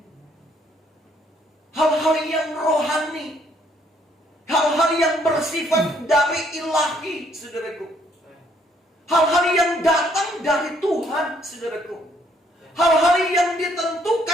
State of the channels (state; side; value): normal; both; correlation 0.67